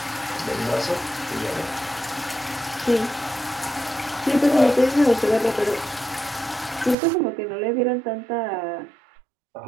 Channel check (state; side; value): drops out; left; at 7.0 s